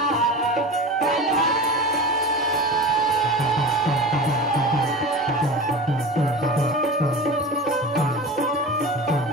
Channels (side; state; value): both; normal; correlation 0.31